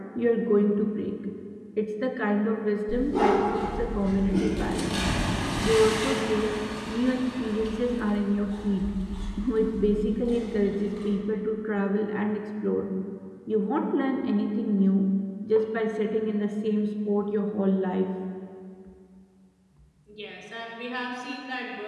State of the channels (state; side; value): identical; both; correlation 1.00